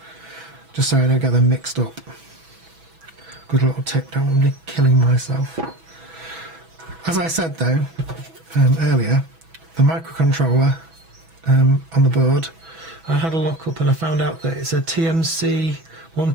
just so I don't get them mixed up. Good little tip, don't want me killing myself. As I said though earlier, the microcontroller on the board, I had a look up and I found out that it's a TMC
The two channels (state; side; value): late; left; 6.1 ms